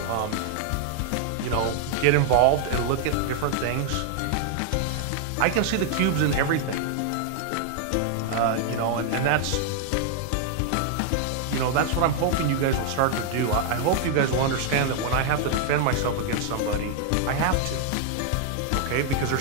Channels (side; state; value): both; different; correlation 0.00